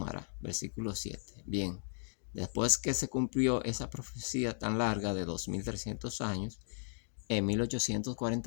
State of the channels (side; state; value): right; silent; digital silence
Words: Versículo 7. Bien, después que se cumplió esa profecía tan larga de 2300 años, en